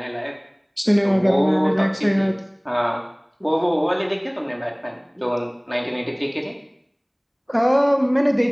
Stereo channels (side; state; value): both; identical; correlation 1.00